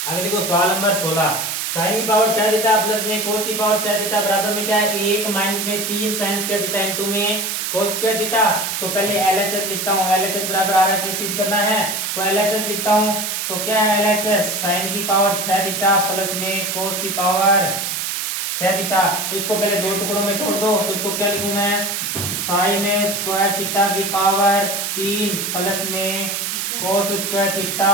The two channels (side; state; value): right; noise; hiss, 2 dB below the sound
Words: आगे देखो सवाल नंबर 16 साइन की पावर 4 थीटा प्लस में कोस की पावर 4 थीटा बराबर में क्या है एक माइनस में 3 साइन स्क्वायर थीटा इंटू में कोस स्क्वायर थीटा। तो पहले एलएचएस लिखता हूं, एलएचएस बराबर आरएचएस सिद्ध करना है तो एलएचएस लिखता हूं। तो क्या है एलएचएस साइन की पावर 6 थीटा प्लस में कोस की पावर 6 थीटा। तो इसको पहले दो टुकड़ों में तोड़ दो तो इसको क्या लिखूं मैं साइन स्क्वायर थीटा की पावर 3 प्लस में कोस स्क्वायर